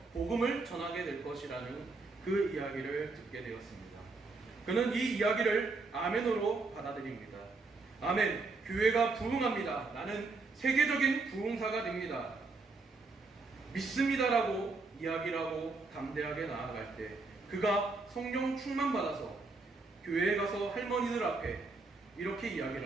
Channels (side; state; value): left; quieter; 3.8 dB